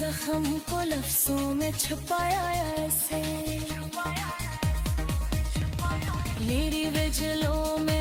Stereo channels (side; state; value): both; identical; correlation 1.00